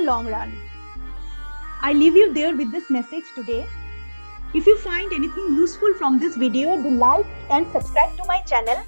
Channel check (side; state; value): both; inverted; correlation -1.00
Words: run. I leave you there with this message today. If you find anything useful from this video, do like and subscribe to my channel